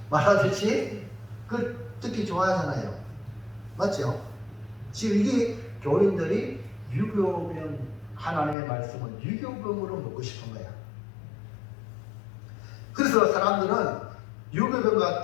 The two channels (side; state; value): right; drops out; at 8.6 s